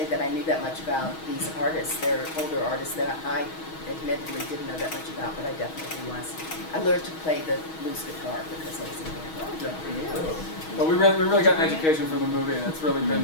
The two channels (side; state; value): right; late; 6.3 ms